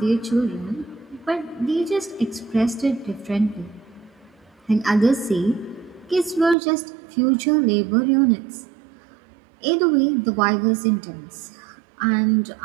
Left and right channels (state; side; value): drops out; left; at 6.6 s